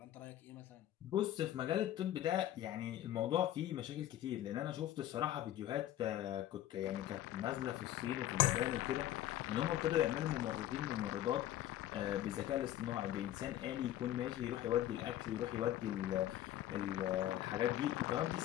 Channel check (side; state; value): right; quieter; 12.9 dB